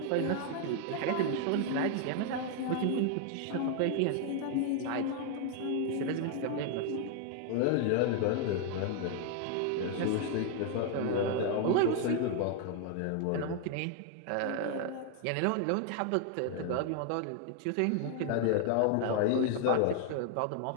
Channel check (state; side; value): different; both; correlation 0.00